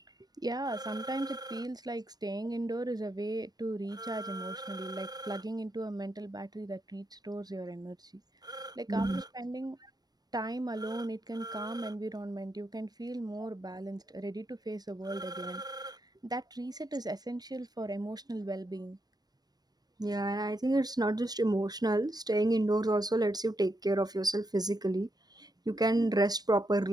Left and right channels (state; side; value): late; left; 0.19 ms